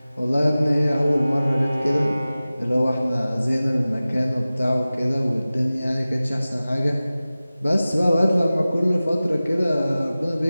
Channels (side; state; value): both; inverted; correlation -0.97